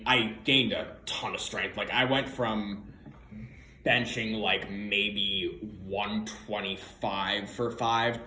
gained a ton of strength. I went from benching maybe 125 for 5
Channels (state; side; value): identical; both; correlation 1.00